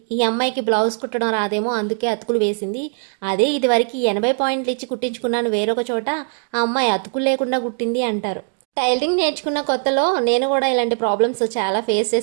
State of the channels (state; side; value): silent; left; 66 dB below the other